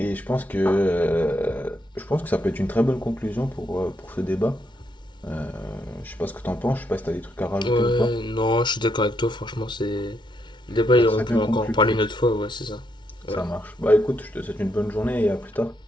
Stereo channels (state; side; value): normal; both; correlation 0.78